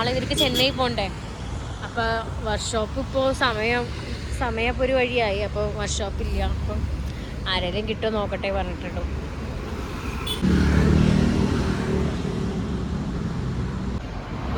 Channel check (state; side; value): identical; both; correlation 1.00